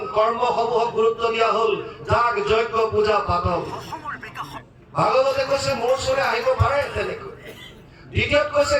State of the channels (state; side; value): identical; both; correlation 1.00